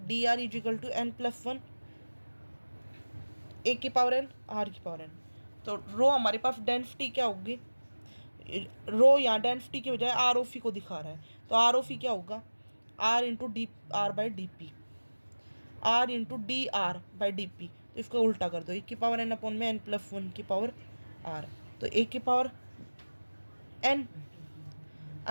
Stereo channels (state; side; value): inverted; both; correlation -1.00